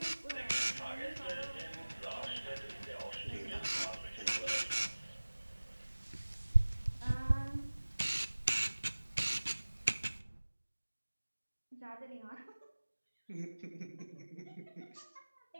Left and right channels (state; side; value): inverted; both; correlation -1.00